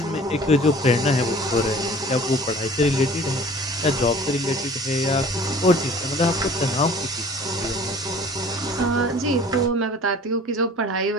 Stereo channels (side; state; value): both; normal; correlation 0.47